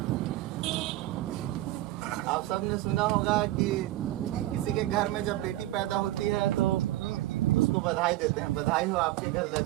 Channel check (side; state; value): left; quieter; 15.9 dB